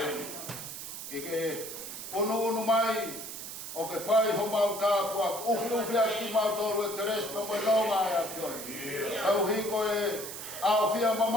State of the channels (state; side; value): noise; right; hiss, 9 dB below the sound